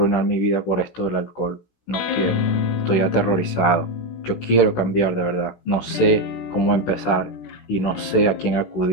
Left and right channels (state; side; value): late; right; 16 ms